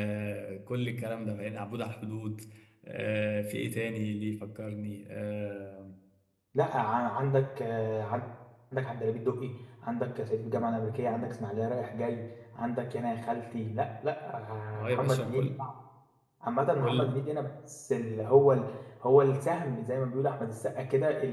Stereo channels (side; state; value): both; identical; correlation 1.00